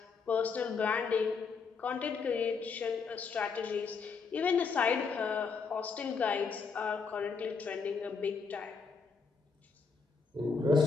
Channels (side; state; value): right; quieter; 5.1 dB